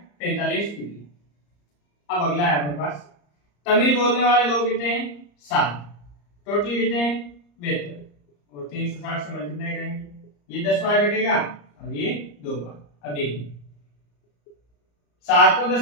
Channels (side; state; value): right; late; 34 ms